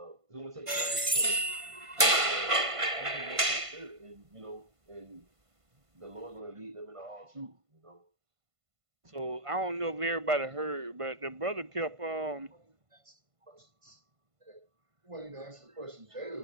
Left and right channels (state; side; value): late; left; 1.5 ms